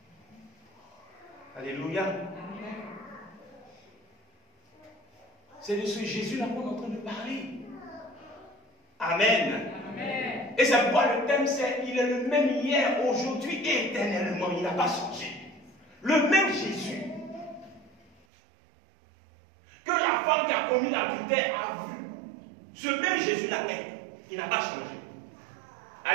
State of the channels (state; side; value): drops out; left; at 18.2 s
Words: Alléluia. C'est de ce Jésus-là qu'on est en train de parler. Amen. Amen. Et c'est pourquoi le thème c'est il est le même hier, aujourd'hui et éternellement. Il n'a pas changé. Le même Jésus que la femme qui a commis l'adultère a vu. Ce même Jésus-là est. Il n'a pas changé.